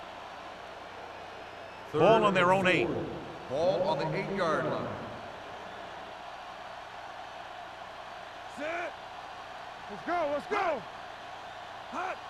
Ball on their own 8. Ball on the 8-yard line. Set. Let's go. Let's go. Hot.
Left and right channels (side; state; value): both; identical; correlation 1.00